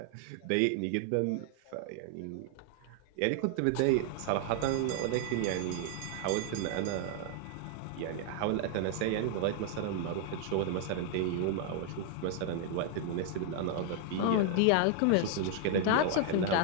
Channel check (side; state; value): both; different; correlation 0.00